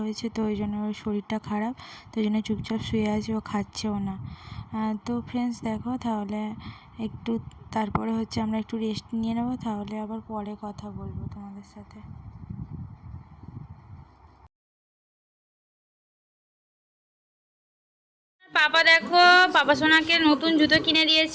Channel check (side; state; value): both; identical; correlation 1.00